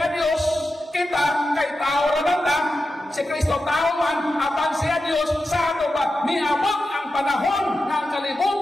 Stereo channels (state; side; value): normal; both; correlation 0.91